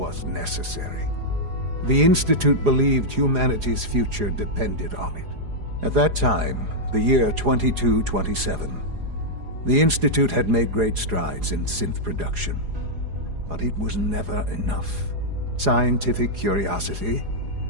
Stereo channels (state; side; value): late; left; 4.8 ms